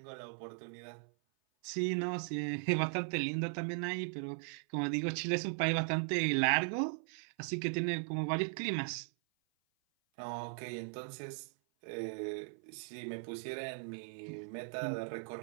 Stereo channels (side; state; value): left; silent; 52 dB below the other